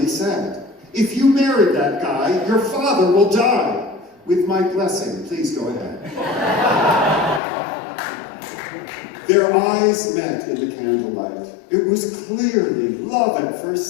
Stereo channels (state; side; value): drops out; right; at 7.4 s